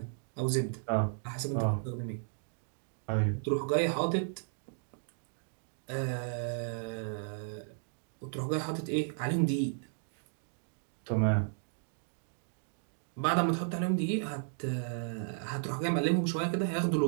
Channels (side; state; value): left; silent; digital silence